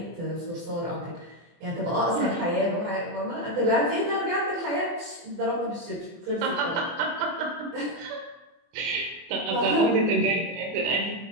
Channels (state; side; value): late; left; 24 ms